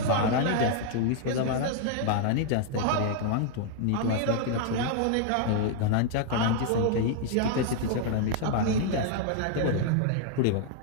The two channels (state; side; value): different; both; correlation 0.00